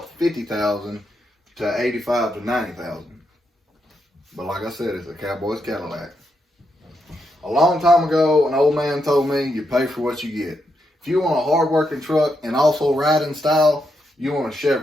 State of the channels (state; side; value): normal; both; correlation 0.82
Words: $50,000 to $85,000 to $90,000. But like I said, it's a cowboy's Cadillac. A long time ago, an old man told me you pay for what you get. If you want a hard-working truck and also ride in style, you want a